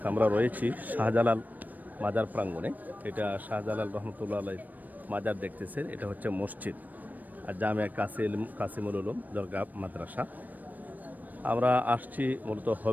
আমরা রয়েছি শাহজালাল মাজার প্রাঙ্গণে। এটা শাহজালাল রহমতুল্লাহ আলাইহির মাজার দেখতেছেন। এটা হচ্ছে মসজিদ আর জামিয়া কাসিমুল উলুম দরগা মাদ্রাসা। আমরা আসছি মূলত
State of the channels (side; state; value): left; late; 0.083 ms